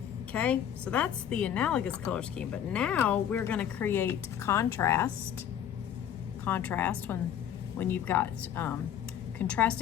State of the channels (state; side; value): quieter; right; 9.7 dB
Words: Okay, so that's the analogous color scheme. But now we're going to create contrast. Contrast when you've got